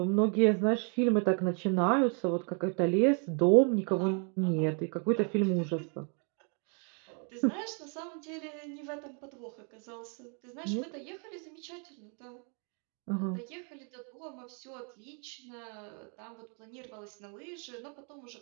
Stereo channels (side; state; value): left; quieter; 39.5 dB